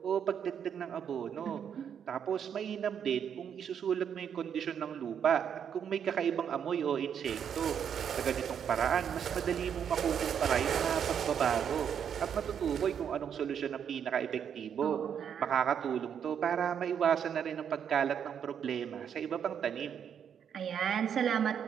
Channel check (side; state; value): left; quieter; 8.2 dB